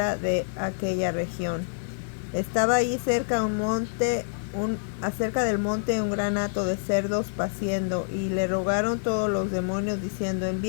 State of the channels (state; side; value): silent; right; 57 dB below the other